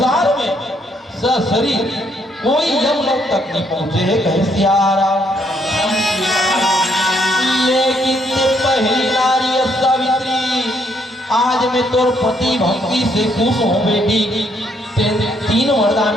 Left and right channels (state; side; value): normal; both; correlation 0.71